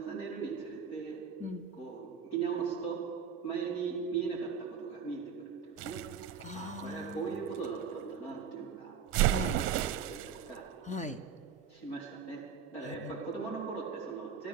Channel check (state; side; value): quieter; left; 6.8 dB